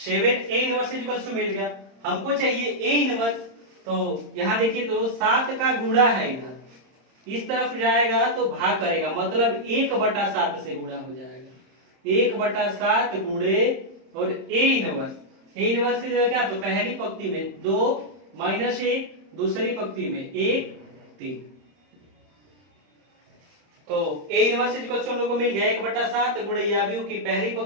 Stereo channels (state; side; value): late; left; 30 ms